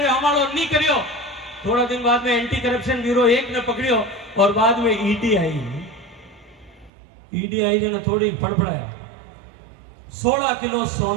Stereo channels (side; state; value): left; drops out; at 6.9 s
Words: हमारो नहीं करियो। थोड़ा दिन बाद में एंटी करप्शन ब्यूरो 1 ने पकड़ियो और बाद में ईडी आई। ईडी आई जो थोड़ी फड़फड़ाया, 16 किलो